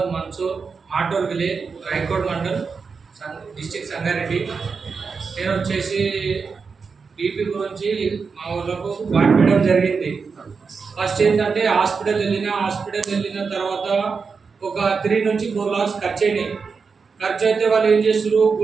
మన్సూర్, మాటూర్ విలేజ్, రాయకోట్ మండల్, డిస్ట్రిక్ట్ సంగారెడ్డి. నేను వచ్చేసి బీపీ గురించి మా ఊళ్ళకు వాడిపోయడం జరిగింది. ఫస్ట్ ఏంటంటే హాస్పిటల్ వెళ్ళిన తర్వాత ఒక 3 నుంచి 4 lakhs ఖర్చు అయినాయి. ఖర్చు అయితే వాళ్ళు ఏం చేస్తారు,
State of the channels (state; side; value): quieter; left; 5.2 dB